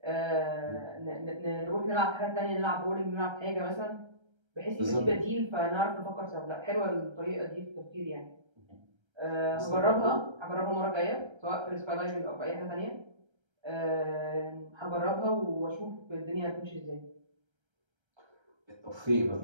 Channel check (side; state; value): left; late; 1.3 ms